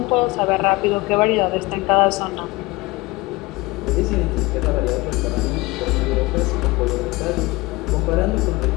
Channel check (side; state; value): right; quieter; 22.0 dB